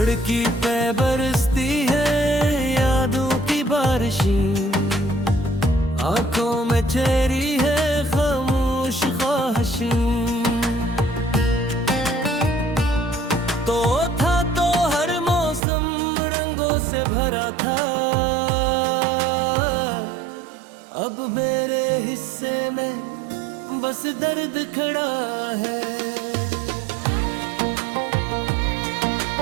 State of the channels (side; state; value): left; drops out; at 15.6 s